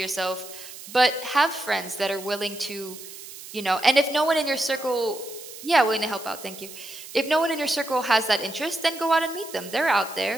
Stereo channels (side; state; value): right; noise; hiss, 14 dB below the sound